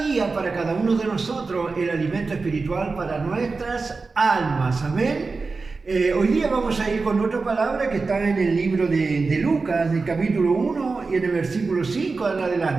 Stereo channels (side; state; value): left; quieter; 4.1 dB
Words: para cada uno de nosotros, el alimento espiritual para nuestras almas. Amén. Hoy día vamos a ir con otra palabra que está en el libro de Lucas, del capítulo 1 y en el versículo 5 en